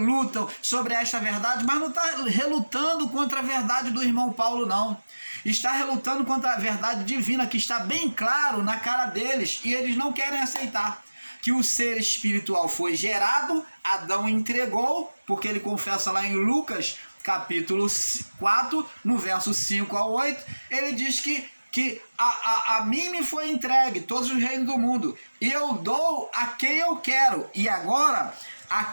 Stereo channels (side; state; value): both; inverted; correlation -1.00